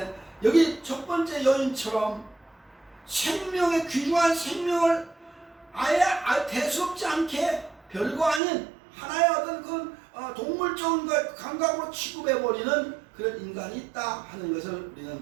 여기 첫 번째 여인처럼 생명의 귀중한 생명을 아예 대수롭지 않게 별거 아닌 하나의 어떤 그 동물적인 것 감각으로 취급해버리는 그런 인간이 있다 하는 것을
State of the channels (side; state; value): left; drops out; at 8.4 s